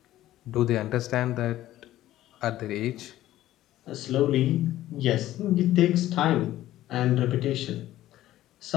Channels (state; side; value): quieter; right; 14.3 dB